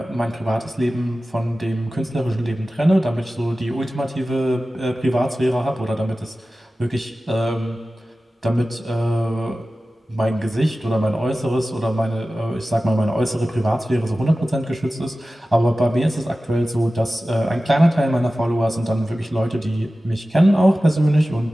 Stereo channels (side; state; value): both; normal; correlation 0.95